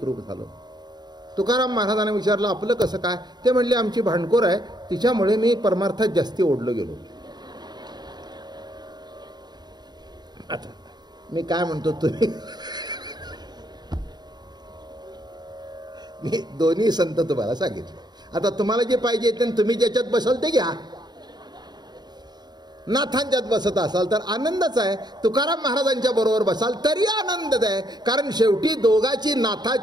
झालो. तुकाराम महाराजांना विचारलं, आपलं कसं काय? ते म्हणले, आमची भांडखोर आहे, तिच्यामुळे मी परमार्थात जास्ती ओढलो गेलो. आता मी काय म्हणतो, तुम्ही मी दोन्ही संत तुम्हाला सांगितले. आता तुम्हाला जे पाहिजे ते तुम्ही ज्याच्यात बसाल ते घ्या. नाथांच्यात बसत असाल तर आनंदच आहे, तुकाराम महाराजांच्या बरोबर बसाल तरी आनंदच आहे. कारण शेवटी दोघाची,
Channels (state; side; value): late; left; 0.20 ms